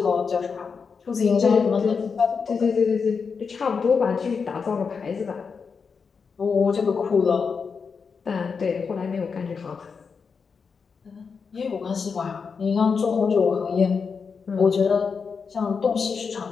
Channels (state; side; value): quieter; right; 5.6 dB